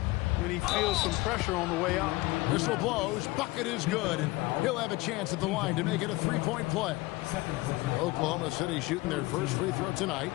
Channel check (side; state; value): right; quieter; 20.9 dB